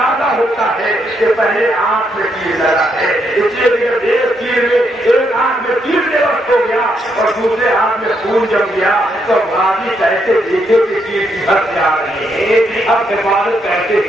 ہوتا ہے کہ پہلے آنکھ میں تیر لگا ہے. اس لیے جب ایک آنکھ میں تیر بے وقت ہو گیا اور دوسرے ہاتھ میں خون جم گیا تو غازی کیسے دیکھے کہ تیر کی حد جا رہے ہیں. اب حفاظت کیسے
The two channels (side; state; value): both; normal; correlation 0.77